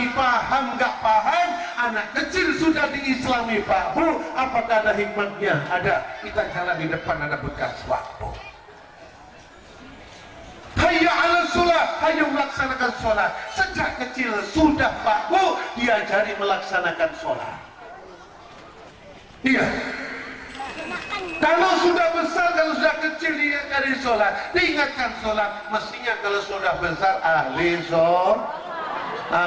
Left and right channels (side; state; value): both; identical; correlation 1.00